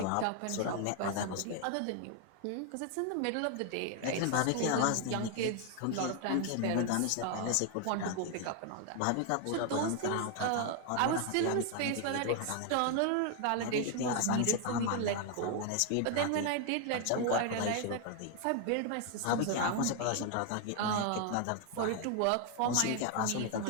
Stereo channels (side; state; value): both; different; correlation 0.01